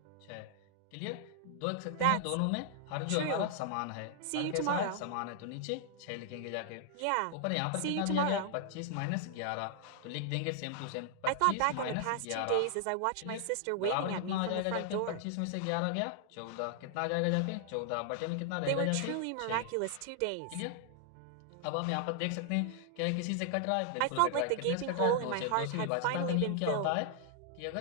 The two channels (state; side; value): different; both; correlation 0.00